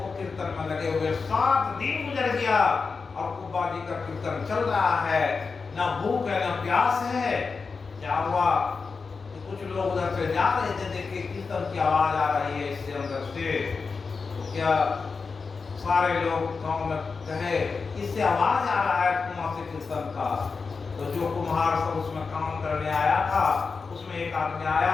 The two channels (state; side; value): quieter; right; 4.8 dB